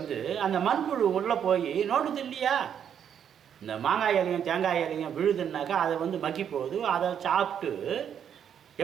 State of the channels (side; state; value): left; quieter; 8.6 dB